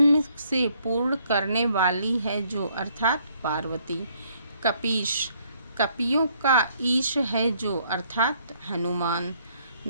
से पूर्ण करने वाली है जो, अर्थात पार्वती। कपीश, कपियों का ईश है जो, अर्थात हनुमान।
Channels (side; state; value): both; inverted; correlation -0.67